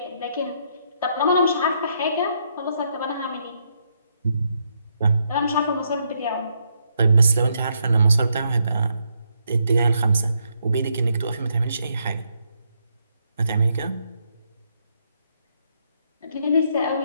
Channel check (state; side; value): inverted; both; correlation -0.76